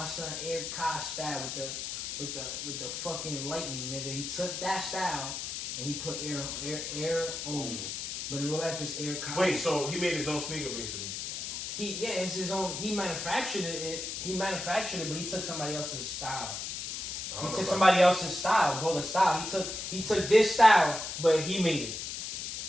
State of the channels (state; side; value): noise; left; hiss, 5 dB below the sound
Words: son Air Kai style with the fucking lightning, nigga. He took that style and he put air on. But in real life, it's Air Kai. Wait, so he made his own sneaker basically? It's his own. He manufactured it. But he took somebody else's style. He took somebody else's style, bro. The style. He took this style, but he made it.